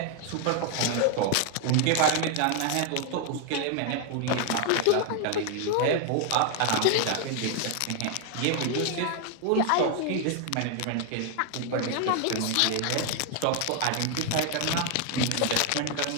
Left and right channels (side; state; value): both; different; correlation 0.01